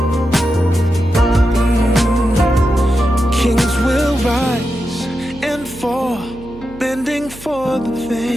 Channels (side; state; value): right; noise; hum, 18 dB below the sound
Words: Kings will rise and fall, bending for the